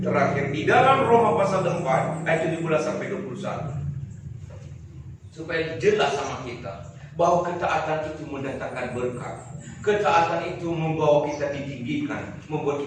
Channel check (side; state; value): both; identical; correlation 1.00